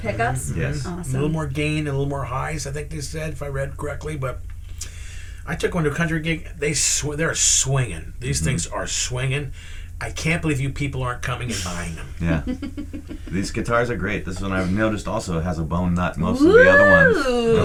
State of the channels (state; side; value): identical; both; correlation 1.00